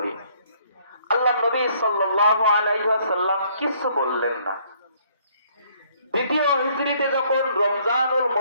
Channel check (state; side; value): inverted; both; correlation -0.64